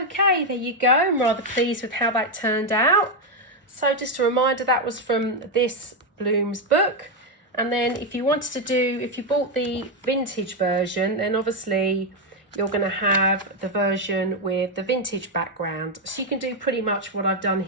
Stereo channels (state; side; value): normal; both; correlation 0.04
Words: Okay, there you go. I'm rather pleased with how that turned out. So just a reminder, that was from this Blooms book. And then if you wanted to do, if you bought the vintage version, then obviously you're going to have the version with the vintage background. So you can do pretty much what I've done